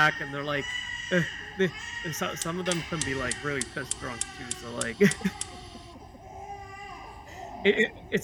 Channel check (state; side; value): identical; both; correlation 1.00